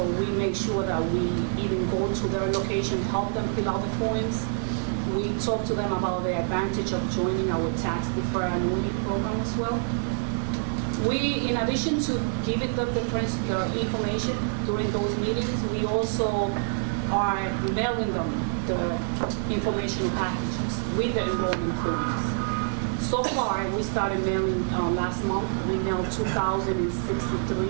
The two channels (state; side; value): silent; left; 60 dB below the other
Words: we make sure that we even go to their location, help them fill out the forms. We talk to them about the advantage of joining our tax deferred annuity program as well. We, in addition to giving them the information during those meetings, we also are mailing them the informational packages with the enrollment forms. So far, we started mailing last month. We mailed